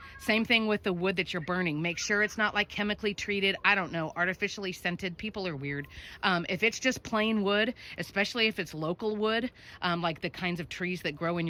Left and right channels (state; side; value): identical; both; correlation 1.00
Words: same thing with the wood that you're burning. Make sure it's not like chemically treated, I don't know, artificially scented. People are weird. If it's just plain wood, especially if it's local wood, like the kinds of trees that grow in